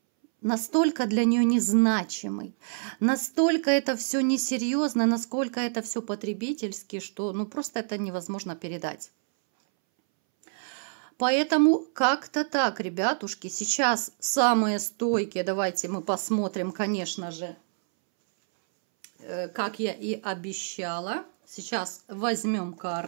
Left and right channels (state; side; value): silent; left; 60 dB below the other